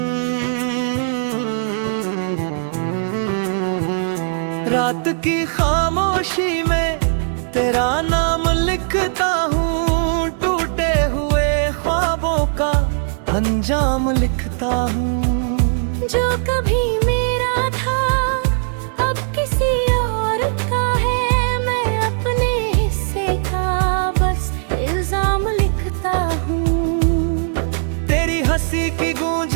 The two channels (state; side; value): silent; left; digital silence